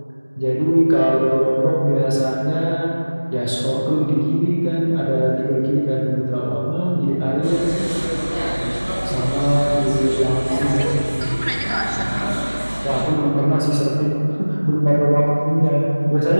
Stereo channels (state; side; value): inverted; both; correlation -1.00